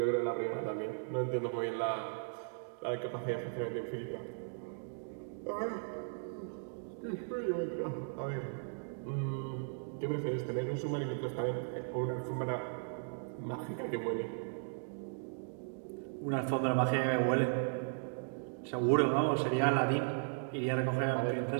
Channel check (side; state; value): left; silent; digital silence